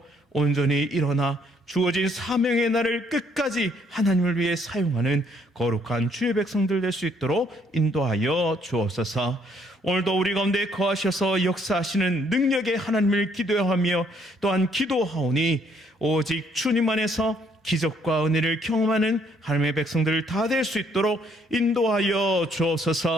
온전히 일어나 주어진 사명의 날을 끝까지 하나님을 위해 사용하는 거룩한 주의 백성들 될 수 있도록 인도하여 주옵소서. 오늘도 우리 가운데 거하셔서 역사하시는 능력의 하나님을 기도하며 또한 기도하오니 오직 주님 안에서 기적과 은혜를 경험하는 하나님의 백성들 다 될 수 있도록 인도하여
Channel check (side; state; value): both; normal; correlation 0.67